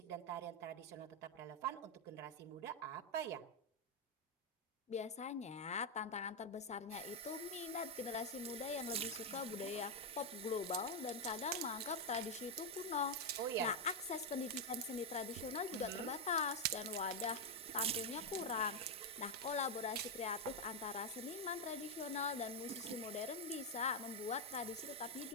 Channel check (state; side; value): normal; both; correlation 0.02